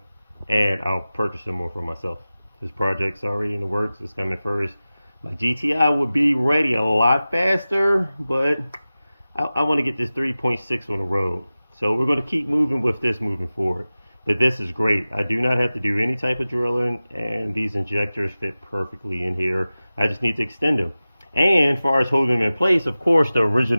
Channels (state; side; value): inverted; both; correlation -0.96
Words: and I'll purchase some more for myself. This project's already in the works. It's coming first. My GTI will be ready a lot faster, but I want to get this 3.6 on the road. So we're going to keep moving with this moving forward. But this is great. I do not have to do any type of drilling, and these injectors fit perfectly in here. I just need to extend them. And as far as holding them in place, of course, the